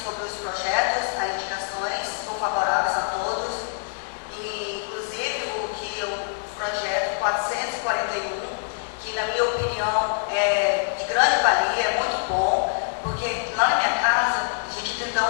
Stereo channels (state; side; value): silent; right; digital silence